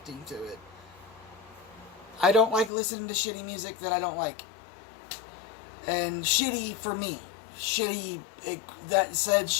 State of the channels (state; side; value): drops out; right; at 2.7 s